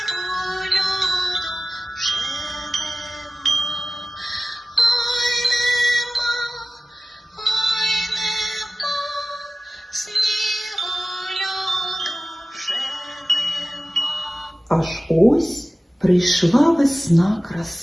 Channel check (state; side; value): normal; both; correlation 0.96